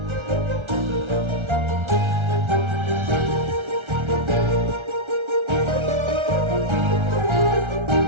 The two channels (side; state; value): left; late; 1.4 ms